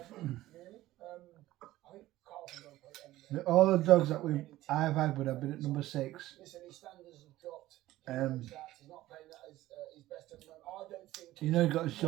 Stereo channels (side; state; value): left; quieter; 15.9 dB